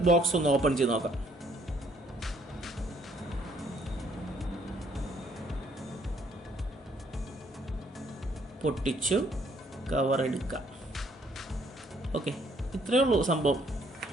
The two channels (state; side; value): normal; both; correlation 0.65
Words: ബോക്സ് ഒന്ന് ഓപ്പൺ ചെയ്ത് നോക്കാം. പൊട്ടിച്ചു കവർ എടുക്കാം. ഓക്കെ, ഇത്രയേ ഉള്ളൂ സംഭവം.